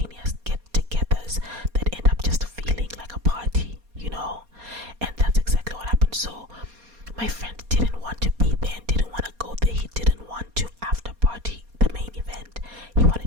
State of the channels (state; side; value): late; left; 4.2 ms